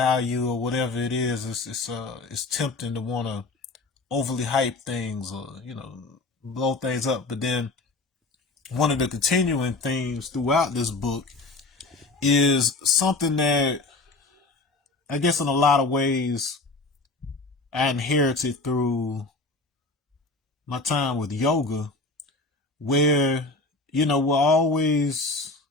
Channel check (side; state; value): right; quieter; 3.4 dB